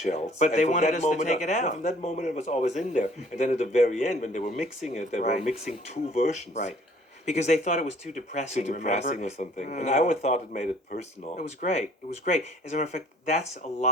But And they from wanted that us to moment take it no, out. from that moment, it was always in there, and then at the very end, when they were mixing it, they were Right. mixing two versions. Right. Because they thought it was too Too depressing, depressing remember? or something, and I always thought it made it personal. It was great. It was great. As a matter of fact, that's a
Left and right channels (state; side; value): normal; both; correlation 0.56